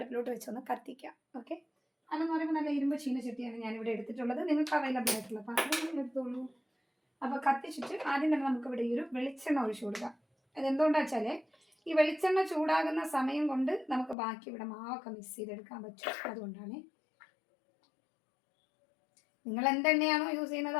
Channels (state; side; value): drops out; right; at 14.2 s